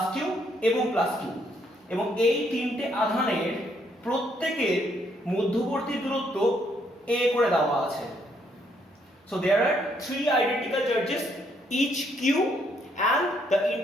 কিউ এবং প্লাস কিউ, এবং এই তিনটে আধানের প্রত্যেকের মধ্যবর্তী দূরত্ব a করে দেওয়া আছে। So there are three identical charges, each q, and the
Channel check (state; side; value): normal; both; correlation 0.71